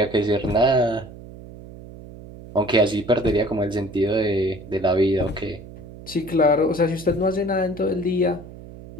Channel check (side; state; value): right; noise; hum, 16 dB below the sound